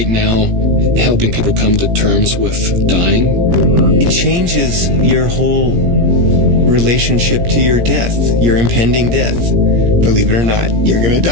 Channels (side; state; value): left; late; 17 ms